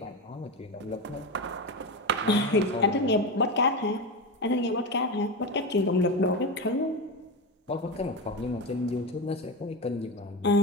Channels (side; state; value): both; normal; correlation 0.18